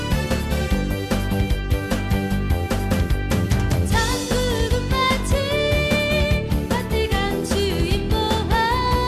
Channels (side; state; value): both; identical; correlation 1.00